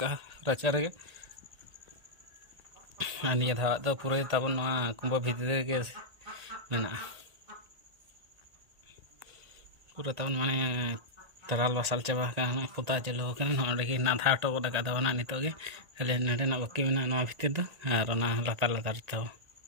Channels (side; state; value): left; late; 1.8 ms